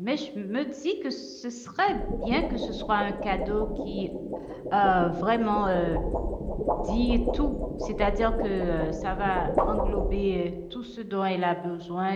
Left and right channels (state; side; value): identical; both; correlation 1.00